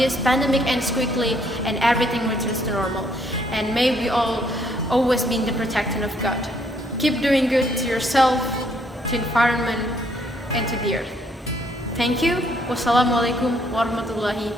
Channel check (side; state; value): both; normal; correlation 0.68